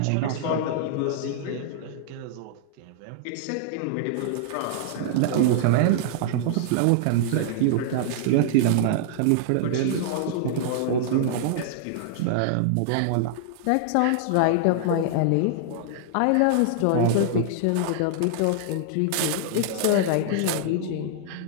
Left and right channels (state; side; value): different; both; correlation -0.01